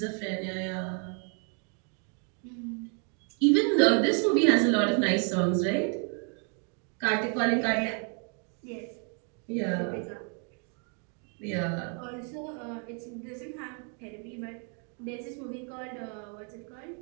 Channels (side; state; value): left; quieter; 40.0 dB